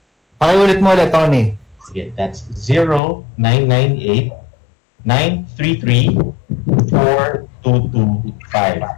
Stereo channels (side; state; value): right; drops out; at 3.0 s